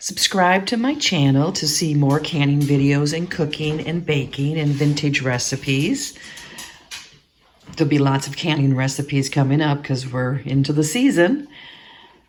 to my channel to see more canning videos and cooking and baking and vintage recipes. There'll be lots of canning recipes coming up because we're into the season.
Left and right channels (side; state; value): both; identical; correlation 1.00